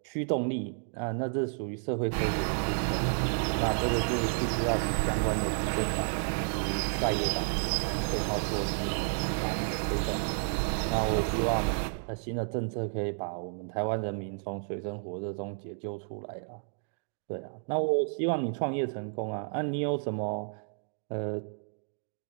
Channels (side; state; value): left; silent; digital silence